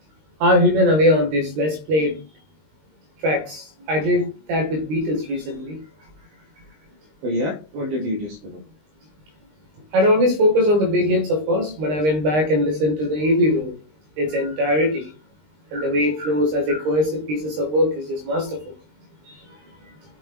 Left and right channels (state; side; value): late; left; 20 ms